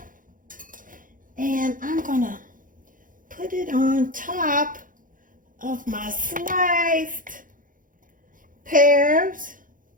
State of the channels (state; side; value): late; left; 0.39 ms